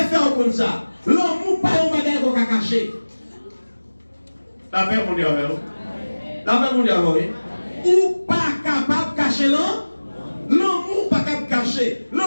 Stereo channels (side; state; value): both; inverted; correlation -1.00